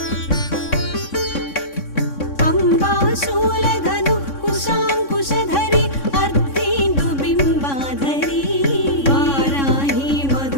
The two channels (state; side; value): late; right; 3.6 ms